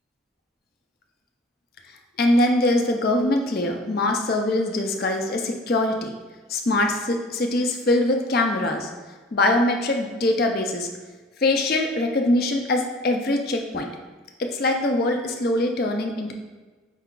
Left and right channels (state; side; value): normal; both; correlation 0.45